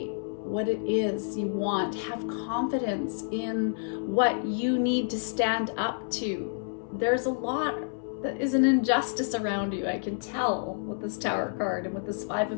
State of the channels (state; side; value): silent; right; 59 dB below the other